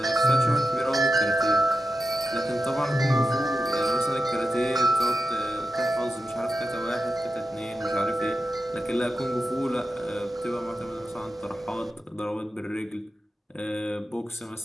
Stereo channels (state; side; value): normal; both; correlation 0.90